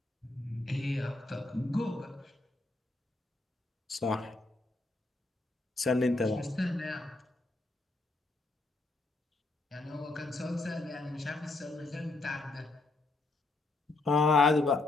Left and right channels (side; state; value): right; quieter; 3.2 dB